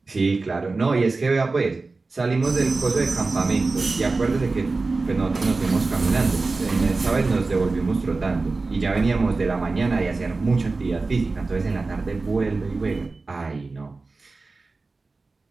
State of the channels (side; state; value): left; quieter; 3.7 dB